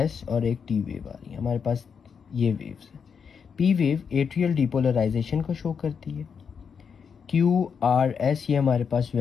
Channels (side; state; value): right; quieter; 6.5 dB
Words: और एक T वेव आ रही है। हमारे पास ये वेव्स है। P वेव एट्रियल डिपोलराइजेशन को शो करती है। Q, R, S ये हमारे पास